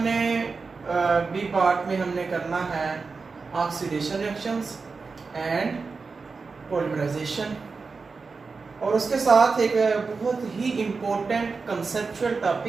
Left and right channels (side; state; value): left; quieter; 4.5 dB